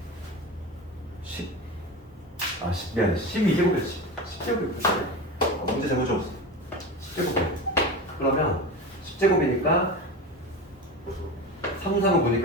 12제곱이었지. 10제곱이었지. 문제 잘못 적었어. 10제곱이야. 그러면 10제곱이니까 3, 3은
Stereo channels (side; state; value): both; normal; correlation 0.26